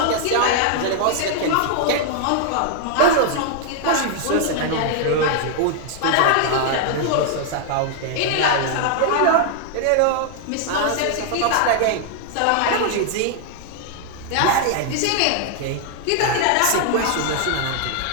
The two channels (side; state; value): both; different; correlation 0.00